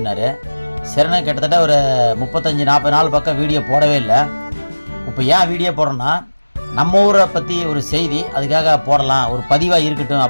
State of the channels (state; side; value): inverted; both; correlation -1.00